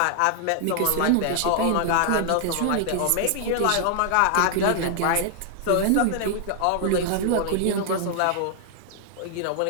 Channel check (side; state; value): both; different; correlation 0.00